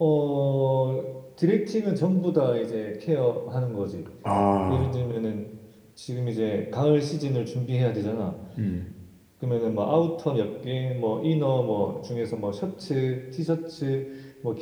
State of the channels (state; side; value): identical; both; correlation 1.00